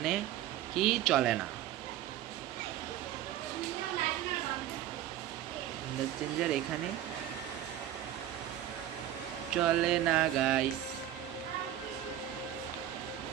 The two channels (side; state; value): left; quieter; 12.2 dB